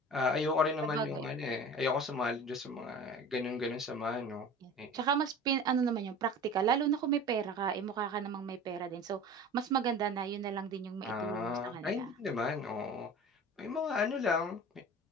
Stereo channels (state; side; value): normal; both; correlation 0.38